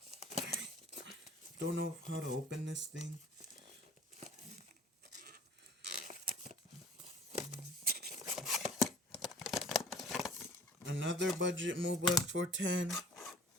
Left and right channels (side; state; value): both; normal; correlation 0.49